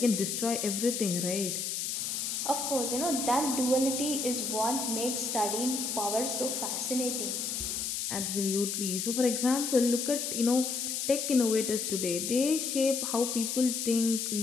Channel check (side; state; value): left; noise; hiss, 2 dB below the sound